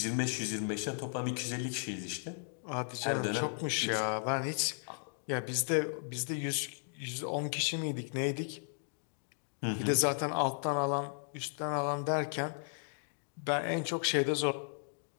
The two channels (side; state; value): right; silent; digital silence